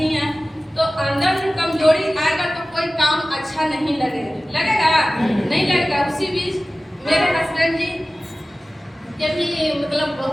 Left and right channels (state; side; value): normal; both; correlation 0.97